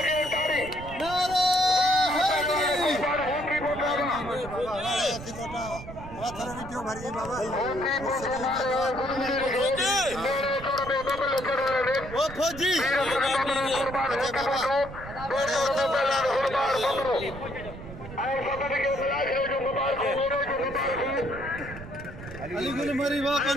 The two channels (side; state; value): right; noise; rumble, 13 dB below the sound